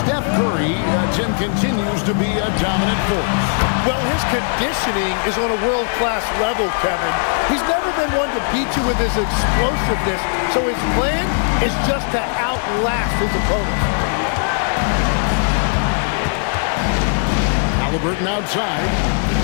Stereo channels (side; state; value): right; silent; 67 dB below the other